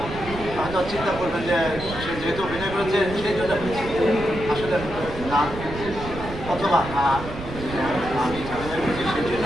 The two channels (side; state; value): right; noise; rumble, 10 dB below the sound